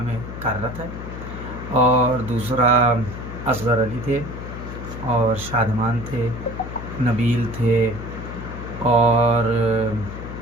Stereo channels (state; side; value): noise; left; hum, 9 dB below the sound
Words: कार्यरत है, और दूसरा असगर अली थे और शादमान थे, नबील थे और